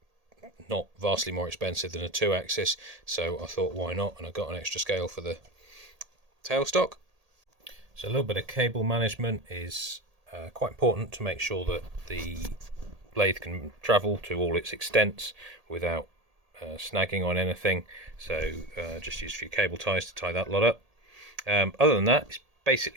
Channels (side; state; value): left; late; 1.8 ms